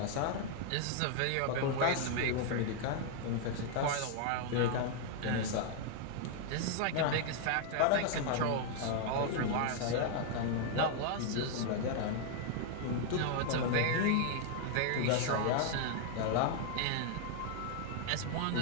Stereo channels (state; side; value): different; both; correlation 0.00